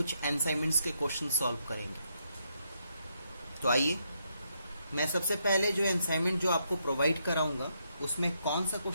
असाइनमेंट्स के क्वेश्चन सॉल्व करेंगे। तो आइए, मैं सबसे पहले जो असाइनमेंट जो आपको प्रोवाइड कराऊंगा उसमें कौन सा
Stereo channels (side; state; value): both; inverted; correlation -0.77